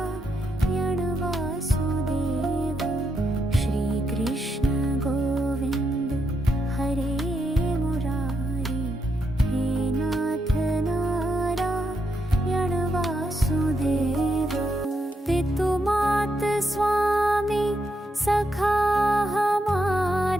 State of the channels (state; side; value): normal; both; correlation 0.81